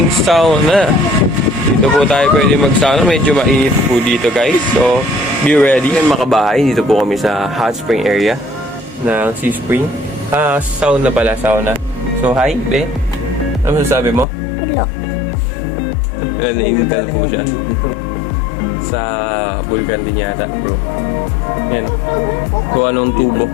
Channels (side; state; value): right; drops out; at 14.2 s